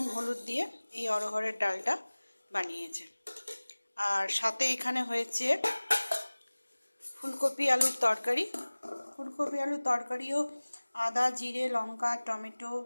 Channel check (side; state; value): both; inverted; correlation -1.00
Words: হলুদ দিয়ে এই অড়হরের ডালটা বানিয়েছে। আর সাথে এখানে হয়েছে ফুলকপি আলুর তরকারি। ফুলকপি আলুর তরকারিও আদা জিরে লঙ্কা টমেটো